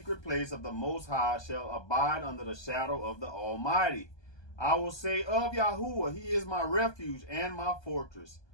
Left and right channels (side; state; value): right; late; 1.2 ms